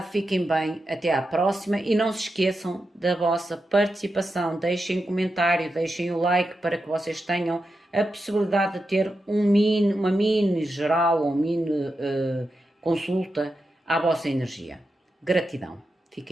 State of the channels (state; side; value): normal; both; correlation 0.88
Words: fiquem bem, até à próxima e não se esqueçam da vossa participação. Deixem um comentário, deixem o like para que vocês tenham a possibilidade de ter uma mini geral ou mini consulta à vossa energia. Gratidão.